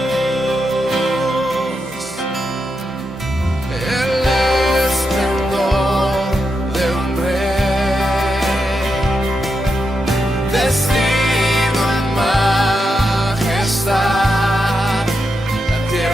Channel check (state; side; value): normal; both; correlation 0.85